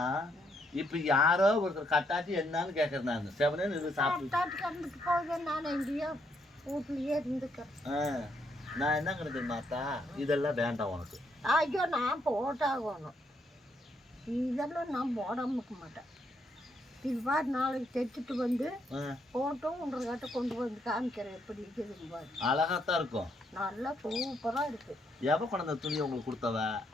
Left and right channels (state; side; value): normal; both; correlation 0.74